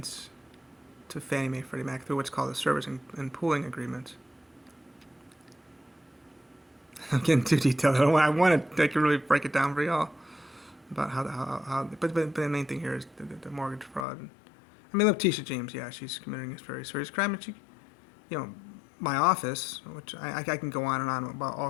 to Fannie Mae, Freddie Mac through what's called a servicing and pooling agreement. I'm getting too detailed. I want to really break it down for y'all about how. But the main thing here is the mortgage fraud. I mean, Letitia James, yeah, she's committing this very serious crime, and she, my office, which I can go on and on about all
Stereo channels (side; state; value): right; drops out; at 14.1 s